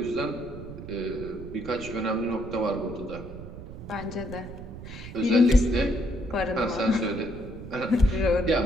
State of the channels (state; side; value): noise; right; rumble, 12 dB below the sound